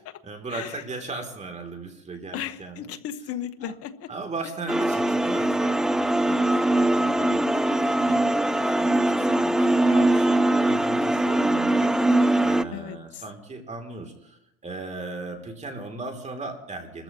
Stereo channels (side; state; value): both; normal; correlation 0.91